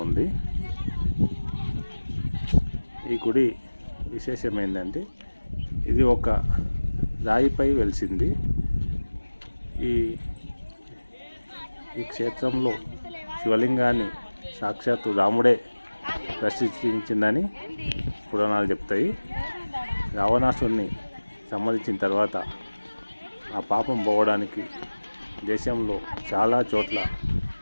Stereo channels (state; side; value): inverted; both; correlation -1.00